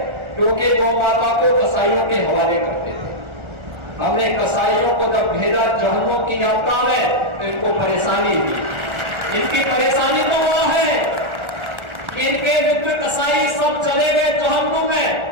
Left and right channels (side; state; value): left; late; 1.4 ms